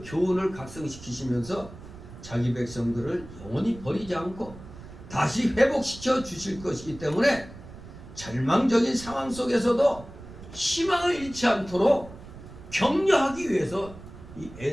교훈을 각성시키시면서 자기 백성들을 영원히 버리지 않고 다시 회복시켜 주실 것이기 때문에 절망적인 상황 속에서도 희망을 잃지 않도록 격려하기 위해서 이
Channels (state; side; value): noise; right; rumble, 16 dB below the sound